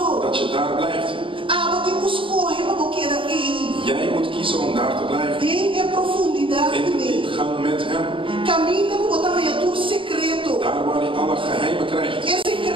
Dat je daar blijft. Aba te escorre para queda en. Jij moet kiezen om daar te blijven. En profundidad In de con Él. diepgang met Hem. Camina para botar a tu secreto. Daar waar je alle geheimen krijgt. Es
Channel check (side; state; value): left; late; 0.25 ms